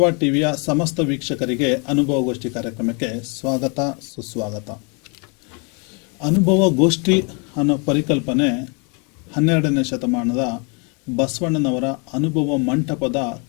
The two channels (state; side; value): quieter; right; 34.5 dB